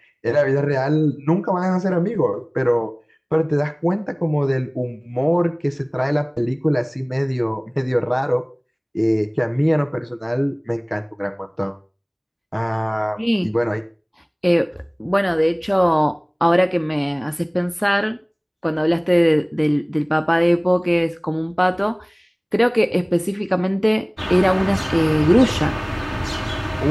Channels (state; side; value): identical; both; correlation 1.00